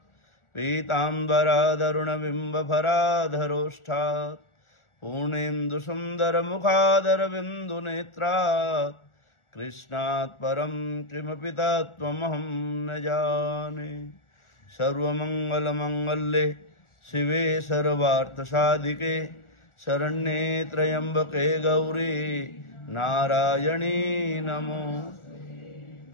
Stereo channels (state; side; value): late; right; 1.4 ms